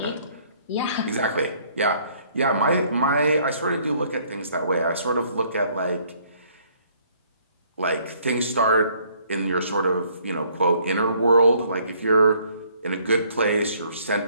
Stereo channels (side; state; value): both; inverted; correlation -0.63